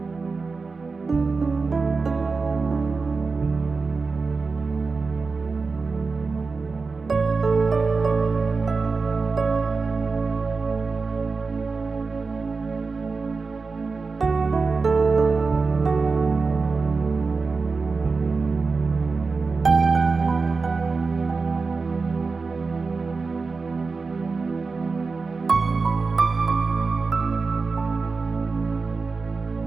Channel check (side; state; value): left; quieter; 4.3 dB